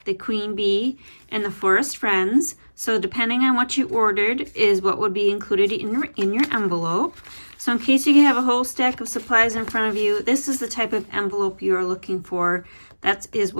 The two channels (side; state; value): both; inverted; correlation -1.00